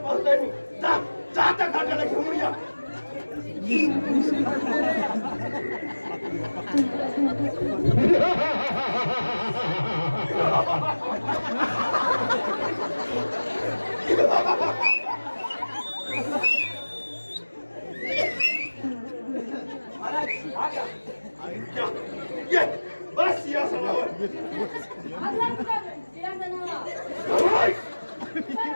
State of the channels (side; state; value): both; inverted; correlation -1.00